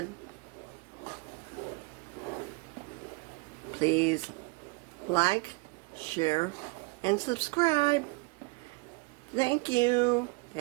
Please like, share, and subscribe. Thank you.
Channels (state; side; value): quieter; left; 28.0 dB